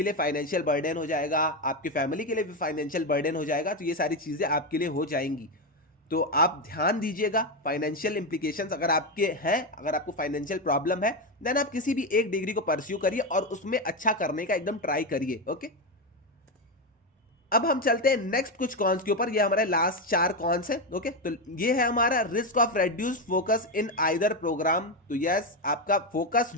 लिए फाइनेंशियल बर्डन हो जाएगा, आपके फैमिली के लिए भी फाइनेंशियल बर्डन हो जाएगा। तो ये सारी चीजें आपके लिए हो जाएंगी। तो आप ध्यान दीजिएगा, फाइनेंशियल इंप्लीकेशंस अगर आपके हैं, अगर आपको फाइनेंशियल प्रॉब्लम है, देन आप किसी भी एक डिग्री को परस्यू करिए और उसमें अच्छा करने का एकदम ट्राई करिए। ओके, अब हम चलते हैं नेक्स्ट कुछ कॉन्स के ऊपर। ये हमारे लास्ट 4 कॉन्स है। ओके, तो ये है हमारा risk of reduce focus in either programme. तो यस, आपका फोकस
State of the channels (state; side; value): normal; both; correlation 0.11